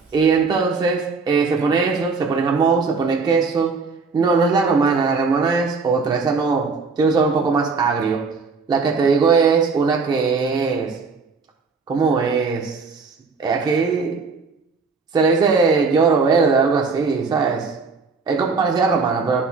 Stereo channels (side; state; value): left; quieter; 4.6 dB